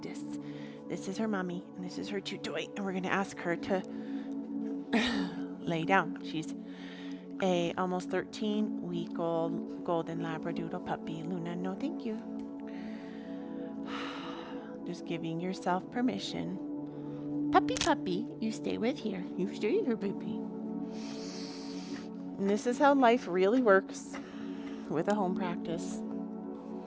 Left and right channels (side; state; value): both; identical; correlation 1.00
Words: This is her mommy, and this is her chew toy, and we're gonna ask her to lay down. She's a almost 13-week-old golden labradoodle puppy. Luna, no thank you. Just giving yourself permission. Puppy, you stay with here. You stay here, baby. And this is how life really works with a home practice.